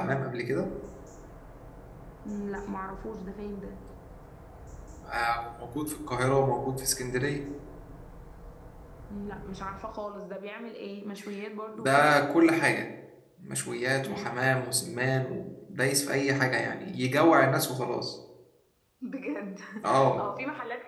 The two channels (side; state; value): both; identical; correlation 1.00